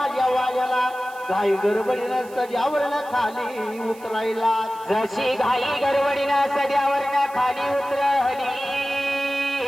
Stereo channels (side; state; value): right; noise; hiss, 23 dB below the sound